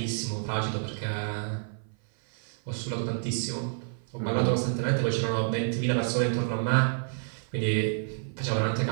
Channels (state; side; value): silent; left; 55 dB below the other